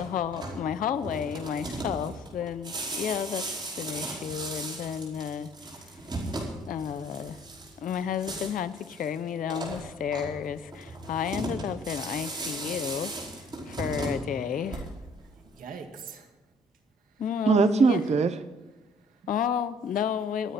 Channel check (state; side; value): normal; both; correlation 0.57